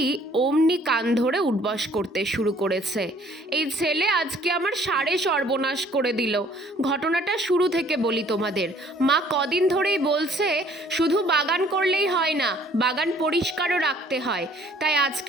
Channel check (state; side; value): normal; both; correlation 0.58